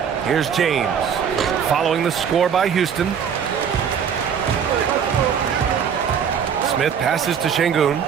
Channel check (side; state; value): left; quieter; 7.6 dB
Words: Here's James, following the score by Houston. Smith passes to Şengün.